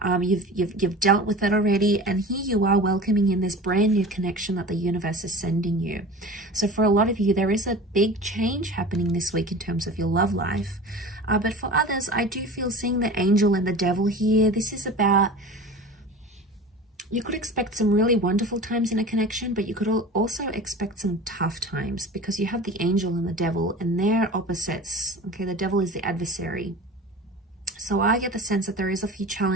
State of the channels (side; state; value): both; normal; correlation 0.36